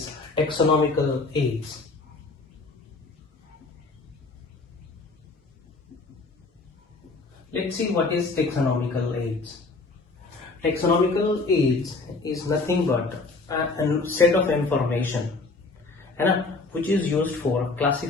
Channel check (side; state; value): right; quieter; 3.7 dB